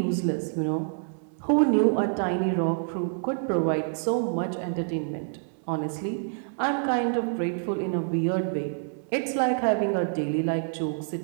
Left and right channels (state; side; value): silent; left; 60 dB below the other